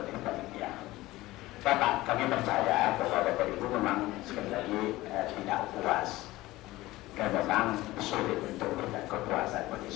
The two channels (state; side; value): quieter; right; 18.1 dB